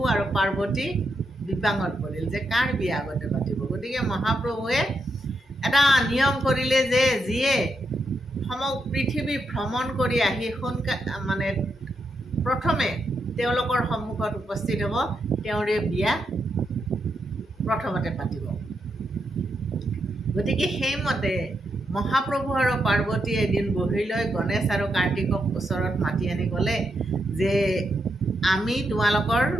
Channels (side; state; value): both; normal; correlation 0.82